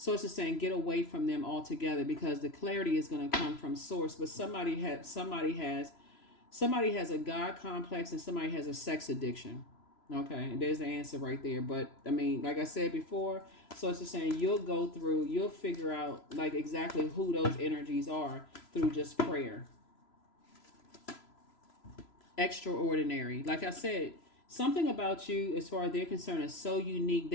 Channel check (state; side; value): late; right; 3.0 ms